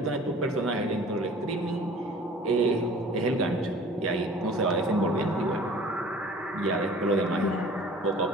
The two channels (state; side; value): normal; both; correlation 0.47